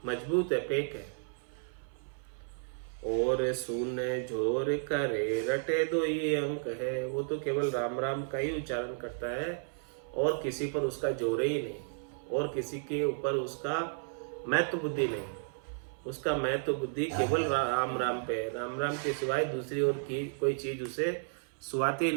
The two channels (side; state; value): left; silent; 56 dB below the other